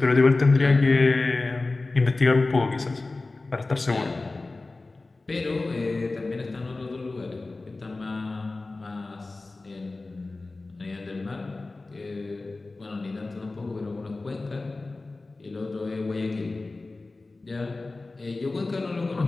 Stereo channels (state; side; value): quieter; right; 3.4 dB